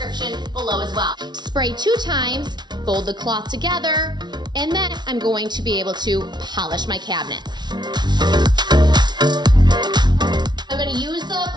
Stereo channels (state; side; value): late; left; 0.20 ms